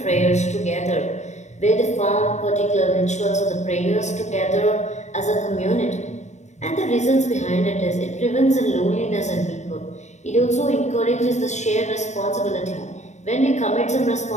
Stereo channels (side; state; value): right; late; 0.34 ms